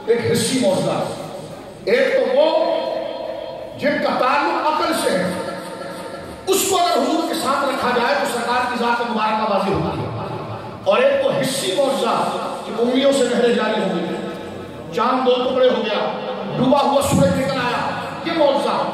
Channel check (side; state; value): both; identical; correlation 1.00